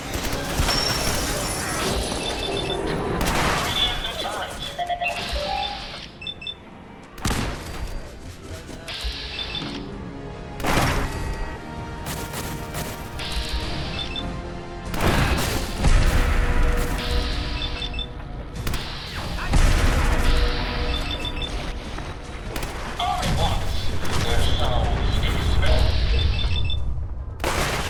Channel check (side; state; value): both; identical; correlation 1.00